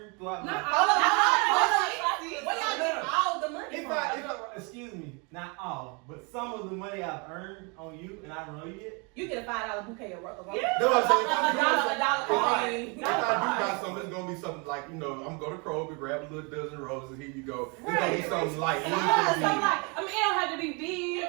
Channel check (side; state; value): left; quieter; 32.1 dB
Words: throughout my Where y'all get all the money from? Excuse me, not all, but some of the money I've earned on you and I don't know you yet. You get a $5 bouquet of roses. That's what I'm saying. $1 coin. If I do buy something, it's gonna be something like, I'm gonna go to Kroger, grab a little dozen roses, here you go. It's gonna be something light. It don't have to be big.